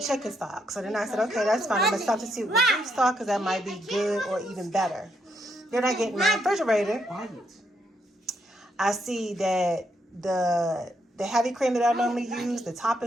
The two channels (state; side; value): normal; both; correlation 0.76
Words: stock. So then I said, okay, that's fine. I'm going to substitute with beef stock because that might be good or even better. Then I get in my refrigerator. I see that the heavy cream that I normally use, the top